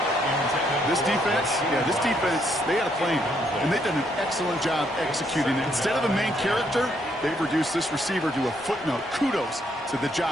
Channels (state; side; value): normal; both; correlation 0.73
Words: This defense, they had a plan, and they've done an excellent job executing it. Instead of a main character, they've reduced this receiver to a footnote. Kudos to the